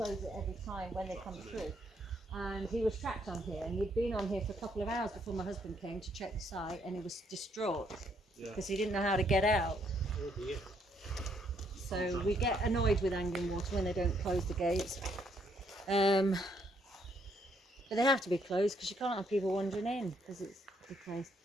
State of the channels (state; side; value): normal; both; correlation 0.71